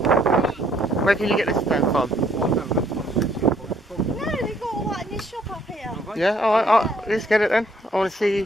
Where can you get this then from? No, they've got all that in this shop up here. Yeah, alright, let's get it then. I want to see you.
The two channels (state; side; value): normal; both; correlation 0.66